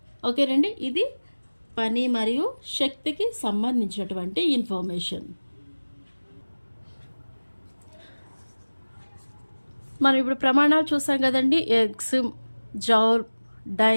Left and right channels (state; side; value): inverted; both; correlation -1.00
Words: ఓకేనండి, ఇది పని మరియు శక్తికి సంబంధించినటువంటి ఇన్ఫర్మేషన్. మనం ఇప్పుడు ప్రమాణాలు చూసాం కదండి. ఎగ్స్, జౌల్,